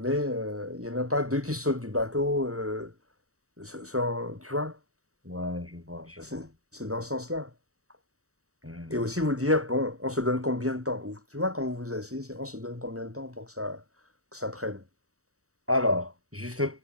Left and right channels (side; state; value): left; late; 0.65 ms